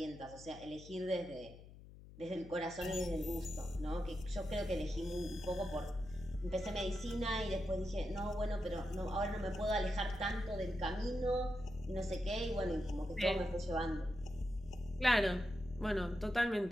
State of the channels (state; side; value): noise; left; hum, 17 dB below the sound